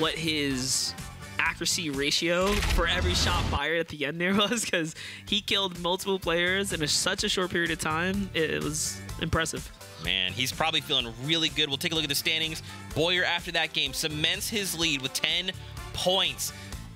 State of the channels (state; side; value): identical; both; correlation 1.00